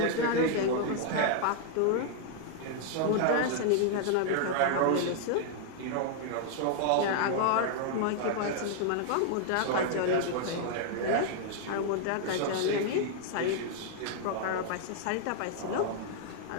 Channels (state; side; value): different; both; correlation 0.00